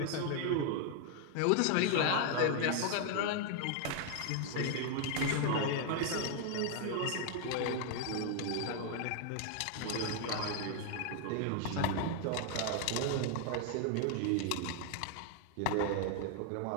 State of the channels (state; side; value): different; both; correlation 0.00